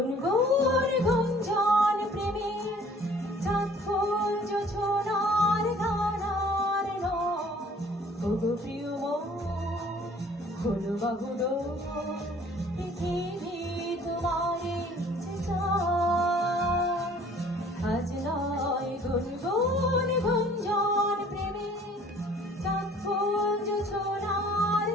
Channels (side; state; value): both; normal; correlation 0.54